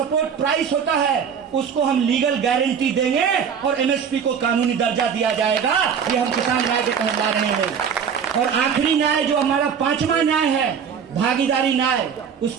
प्राइस होता है, उसको हम लीगल गारंटी देंगे और एमएसपी को कानूनी दर्जा दिया जाएगा। ये हम किसान न्याय के तहत ला रहे हैं। और आखिरी न्याय जो हमारा 5वां न्याय है, भागीदारी न्याय,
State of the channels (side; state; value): left; quieter; 7.2 dB